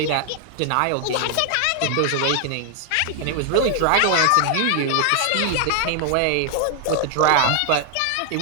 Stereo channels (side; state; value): both; different; correlation 0.00